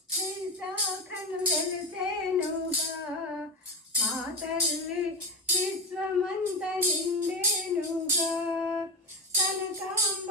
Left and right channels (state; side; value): normal; both; correlation 0.19